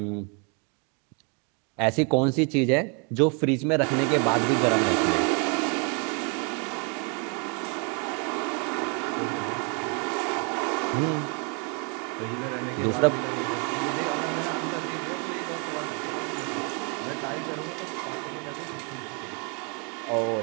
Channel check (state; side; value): quieter; left; 36.0 dB